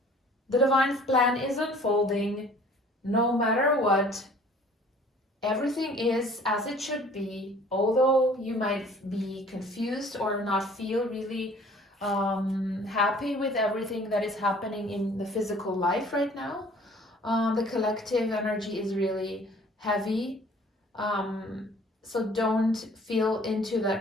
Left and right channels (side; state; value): both; normal; correlation 0.52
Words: The Divine Plan is unfolding no matter what. Everything is as it should be, although you might be confused or not feel really happy with everything that is happening in the physical life right now. The collective energy is really heavy. So don't feel into